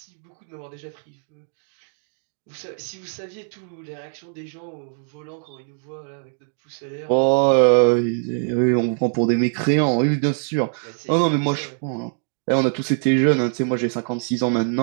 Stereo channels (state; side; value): silent; left; digital silence